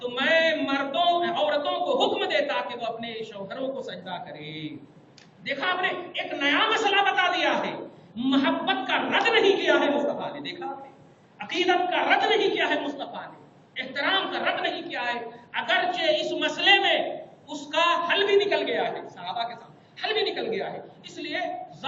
میں عورتوں کو حکم دیتا کہ وہ اپنے شوہروں کو سجدہ کرے. دیکھا آپ نے، ایک نیا مسئلہ بتا دیا ہے. محبت کا رد نہیں کیا ہے مصطفیٰ نے. دیکھا آپ نے، عقیدت کا رد نہیں کیا ہے مصطفیٰ نے، احترام کا رد نہیں کیا ہے. اگرچہ اس مسئلے میں اس کا حل بھی نکل گیا ہے، صحابہ کے سامنے حل بھی نکل گیا ہے. اس لیے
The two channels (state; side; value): identical; both; correlation 1.00